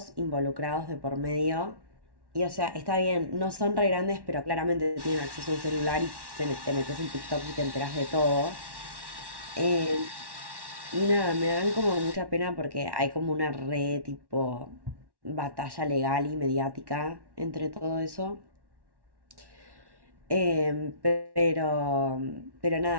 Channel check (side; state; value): left; late; 1.1 ms